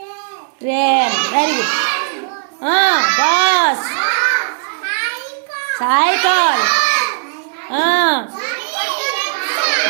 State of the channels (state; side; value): silent; left; digital silence